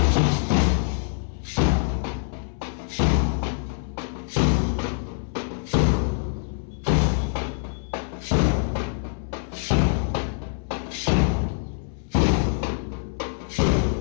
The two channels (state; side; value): silent; right; 62 dB below the other